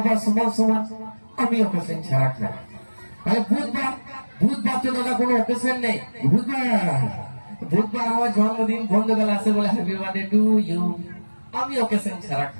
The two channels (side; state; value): both; inverted; correlation -1.00